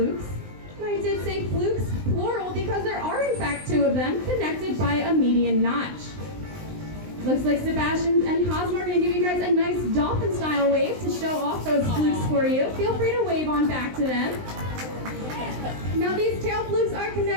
And I did say flukes, plural, because there are in fact 2 of them connected by a median notch. Looks like Sebastian and Cosmo are going to give you guys a nice dolphin-style wave to show off those flukes for you. Feel free to wave on back to them. Now these tail flukes are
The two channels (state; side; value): late; left; 19 ms